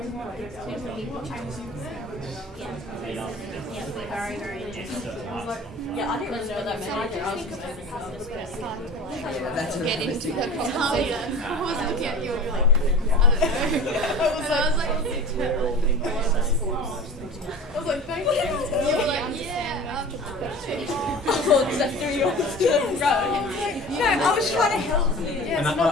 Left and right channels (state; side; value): normal; both; correlation 0.37